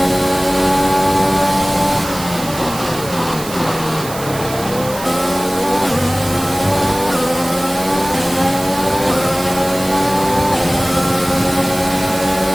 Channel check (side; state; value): right; noise; hiss, 12 dB below the sound